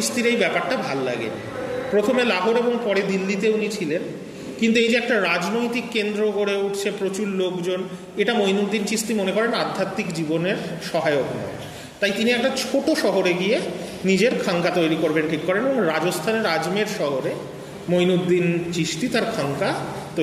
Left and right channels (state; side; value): identical; both; correlation 1.00